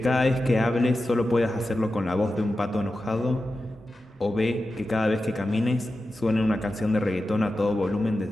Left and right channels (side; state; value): both; normal; correlation 0.92